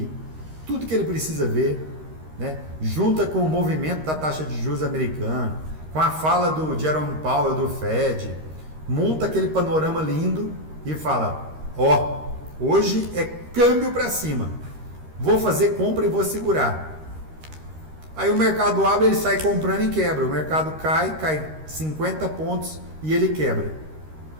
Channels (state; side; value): late; left; 13 ms